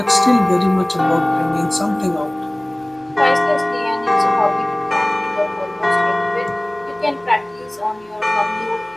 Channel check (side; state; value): right; noise; hum, 30 dB below the sound